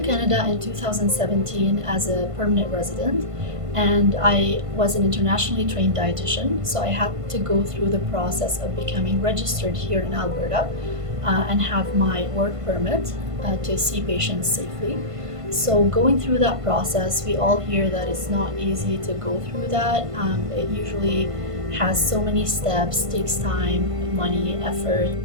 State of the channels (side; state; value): left; late; 1.5 ms